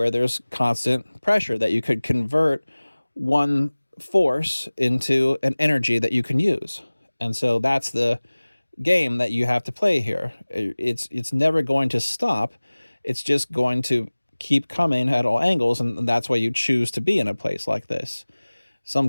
there's constant pressure that you could convert one force into an energy that you can use. And so that's the game that you have to play here. It's never going to stop. It's just going to keep coming at all angles, and that's why you choose to be in a place like this. Some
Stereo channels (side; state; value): both; inverted; correlation -1.00